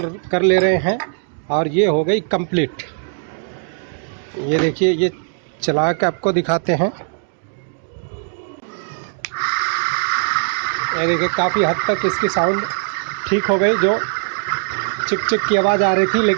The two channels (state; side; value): silent; left; digital silence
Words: ले रहे हैं और ये हो गई कंप्लीट। ये देखिए ये चला के आपको दिखाते हैं। ये देखिए काफ़ी हद तक इसकी साउंड ठीक हो गई। जो चिक चिक की आवाज़ आ रही थी,